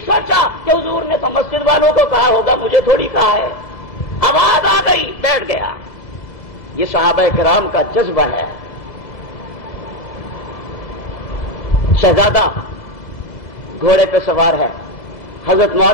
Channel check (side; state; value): right; late; 2.0 ms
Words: سوچا کہ حضور نے تو مسجد والوں کو کہا ہوگا، مجھے تھوڑی کہا ہے، آواز آ گئی بیٹھ گیا۔ یہ صحابہ کرام کا جذبہ ہے۔ شہزادہ گھوڑے پہ سوار ہے، حضرت